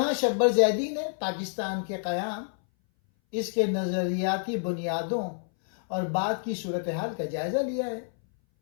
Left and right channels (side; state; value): right; silent; 58 dB below the other